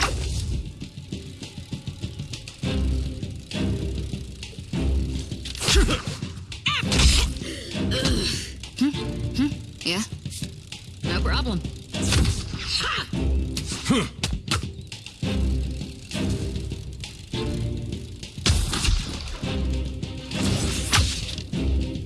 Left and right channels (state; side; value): identical; both; correlation 1.00